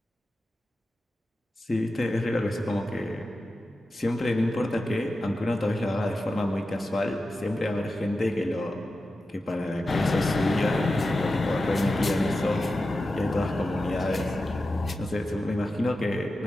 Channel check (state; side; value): normal; both; correlation 0.92